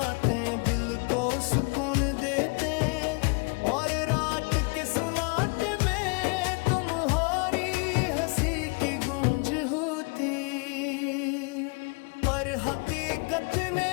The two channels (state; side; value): quieter; right; 31.9 dB